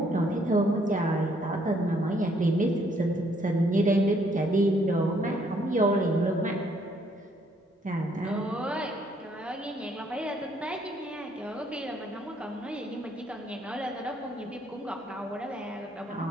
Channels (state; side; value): normal; both; correlation 0.67